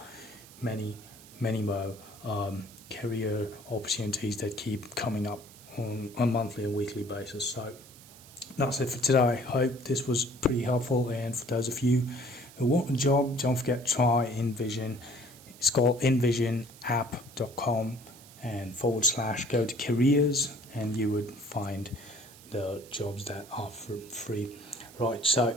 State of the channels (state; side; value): noise; right; hiss, 21 dB below the sound